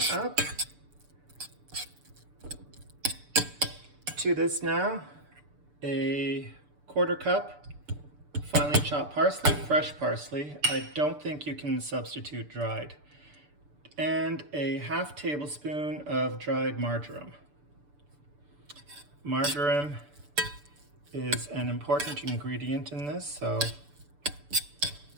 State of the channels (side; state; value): left; late; 6.8 ms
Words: up. To this now, a quarter cup finely chopped parsley, fresh parsley. I don't think you can substitute dried. And a half tablespoon of dried marjoram. Marjoram is an important ingredient in this, so